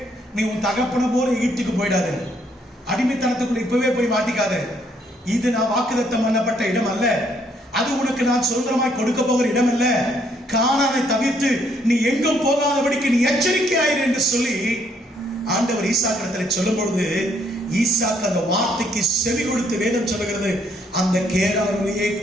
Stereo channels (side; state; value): both; normal; correlation 0.69